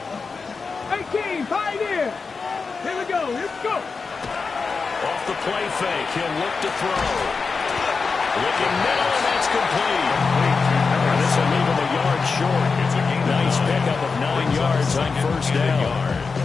18, pioneer. Here we go, here we go. Off the play fake, he'll look to throw. Looking middle, and that's complete. And this will leave him a yard short. Nice pickup of 9 yards on first down.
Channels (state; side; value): quieter; right; 4.7 dB